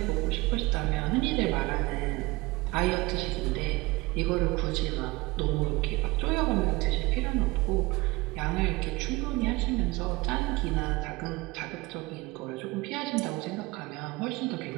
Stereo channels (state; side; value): quieter; left; 22.5 dB